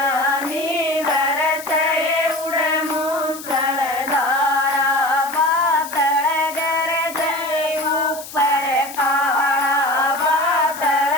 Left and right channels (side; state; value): left; noise; hiss, 14 dB below the sound